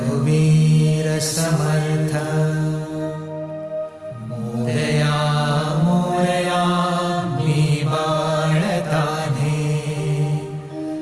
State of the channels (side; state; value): both; identical; correlation 1.00